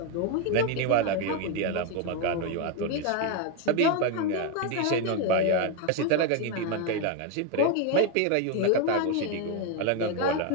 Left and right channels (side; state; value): both; different; correlation 0.01